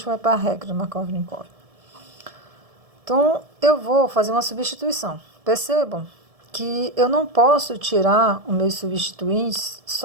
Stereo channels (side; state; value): left; late; 1.7 ms